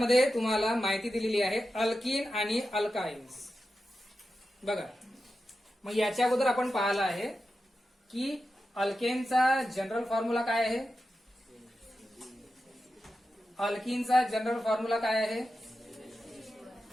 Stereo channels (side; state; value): both; normal; correlation 0.91